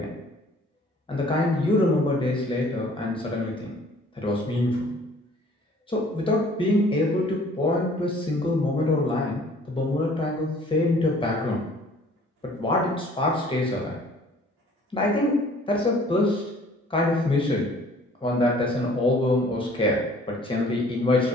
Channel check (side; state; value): both; normal; correlation 0.54